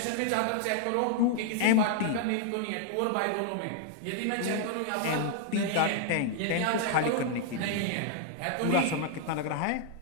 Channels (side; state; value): both; different; correlation 0.00